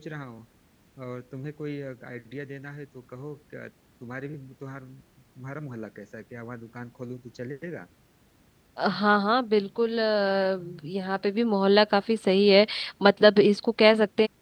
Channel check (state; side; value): identical; both; correlation 1.00